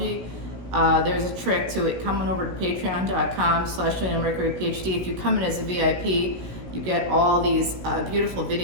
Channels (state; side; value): late; left; 16 ms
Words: there's a trick to it. Come on over to patreon.com/leonamercuryphd. If you come in as a VIP, you get all these beautiful